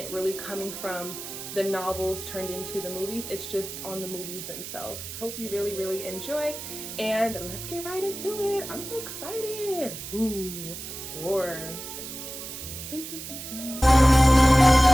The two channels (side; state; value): right; noise; hiss, 9 dB below the sound